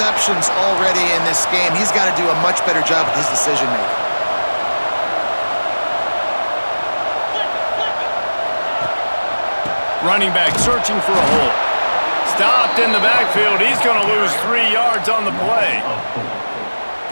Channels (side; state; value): both; inverted; correlation -1.00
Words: already in this game. He's got to do a much better job with his decision-making. Running back searching for a hole. Stopped in the backfield. He's going to lose 3 yards on the play.